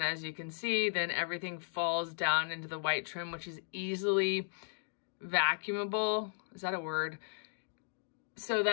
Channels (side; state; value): right; silent; digital silence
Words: as you can see, then everything falls down into the white trim, which is easily vacuumable. Is that a word? So